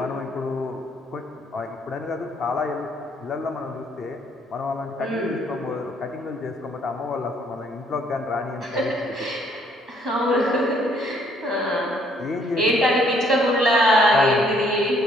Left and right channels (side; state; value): both; normal; correlation 0.65